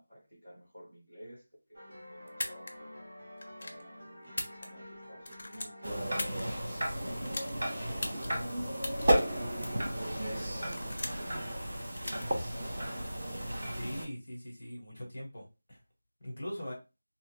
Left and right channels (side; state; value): both; inverted; correlation -0.95